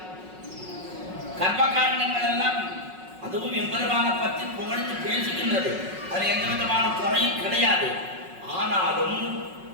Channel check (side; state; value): left; late; 5.4 ms